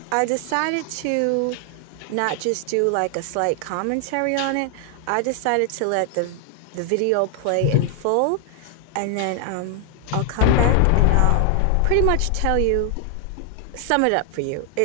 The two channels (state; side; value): different; both; correlation 0.00